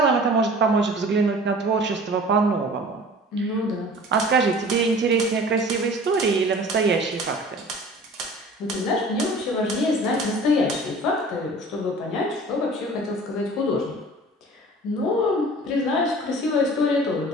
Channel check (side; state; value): both; normal; correlation 0.44